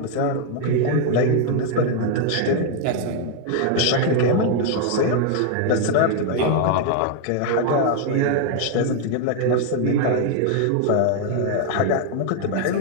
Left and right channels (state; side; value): different; both; correlation 0.00